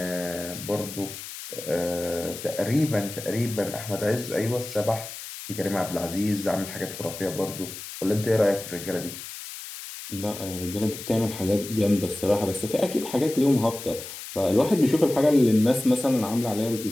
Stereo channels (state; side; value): noise; left; hiss, 11 dB below the sound